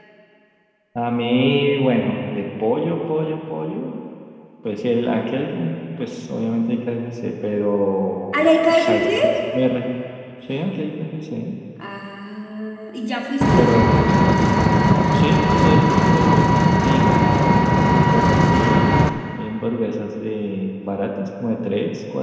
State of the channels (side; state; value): both; identical; correlation 1.00